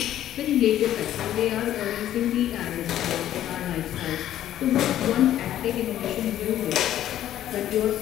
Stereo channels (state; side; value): quieter; right; 12.0 dB